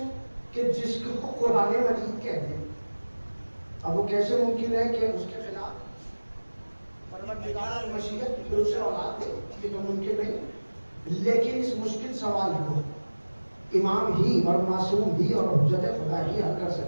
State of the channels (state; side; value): inverted; both; correlation -1.00